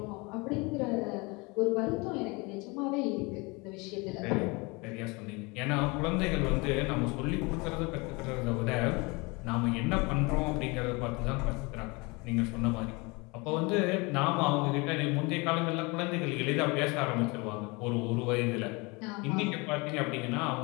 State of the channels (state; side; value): quieter; right; 26.9 dB